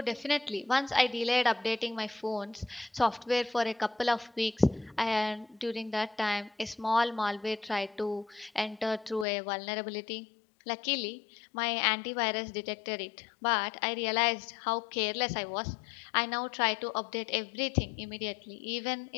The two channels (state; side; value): drops out; right; at 9.2 s